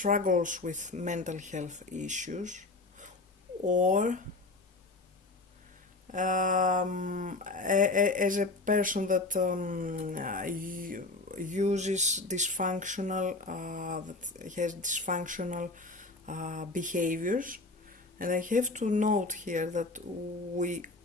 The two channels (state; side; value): quieter; right; 3.2 dB